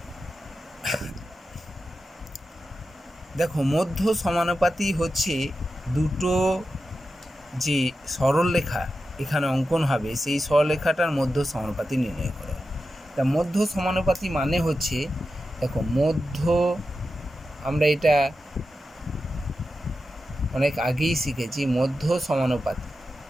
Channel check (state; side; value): normal; both; correlation 0.91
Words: দেখো, মধ্য সমানুপাতি হচ্ছে দুটো যে সরলরেখা এখানে অঙ্কন হবে, সেই সরলরেখাটার মধ্য সমানুপাতি নির্ণয় করা। তা মধ্য সমানুপাতি মানে হচ্ছে, দেখো মধ্য, আমরা এটা অনেক আগেই শিখেছি। মধ্য